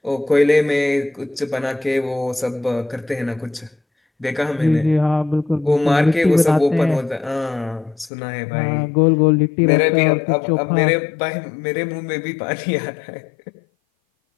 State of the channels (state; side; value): drops out; right; at 8.1 s